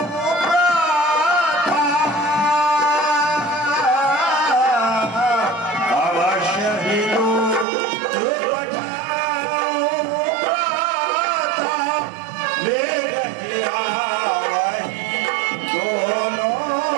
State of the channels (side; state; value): left; drops out; at 7.7 s